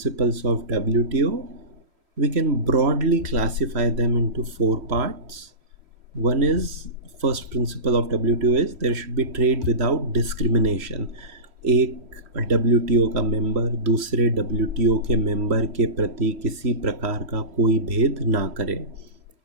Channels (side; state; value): left; late; 3.1 ms